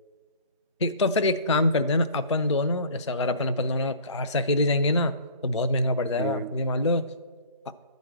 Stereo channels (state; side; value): inverted; both; correlation -0.45